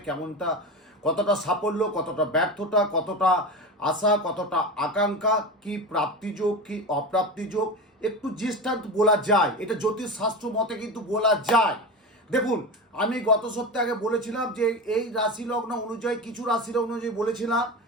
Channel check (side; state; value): both; normal; correlation 0.24